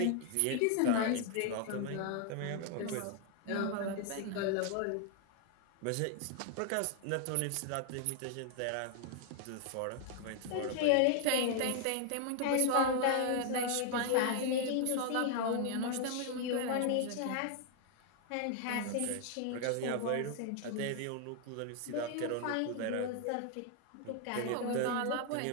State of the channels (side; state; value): both; different; correlation 0.00